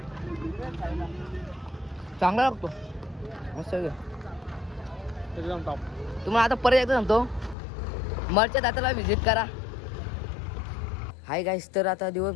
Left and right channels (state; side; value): drops out; right; at 7.6 s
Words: चांगला लागतो मस्त. तुम्हाला आता परत एकदा सांगतो, मरच्या दाताला व्हिजिट करा. हाय गाईस, तर आता